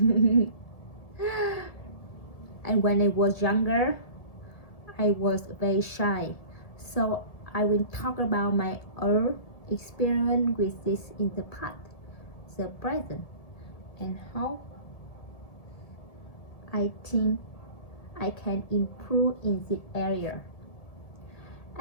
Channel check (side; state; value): right; late; 1.7 ms